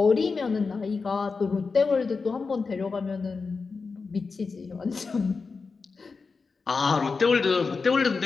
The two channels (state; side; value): quieter; right; 4.6 dB